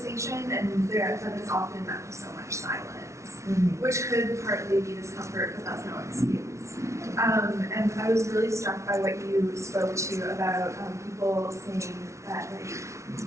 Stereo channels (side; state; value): left; late; 0.14 ms